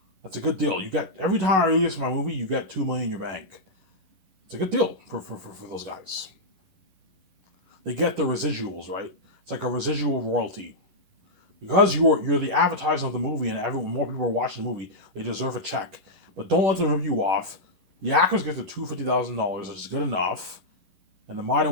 That's a good deal. You get every time I release my movie, you get $2 million in your bank. It's a good deal for those guys. They get the residuals, right? It's like a residual royalty. Because you're the advertiser of the movie, and more people are watching the movie, they deserve a check. But don't let them rip you off. The actors get the $250,000, which is good enough, and the minor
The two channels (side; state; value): left; late; 11 ms